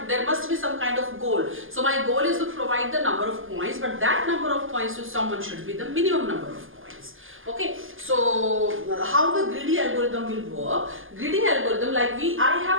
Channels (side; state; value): left; late; 0.59 ms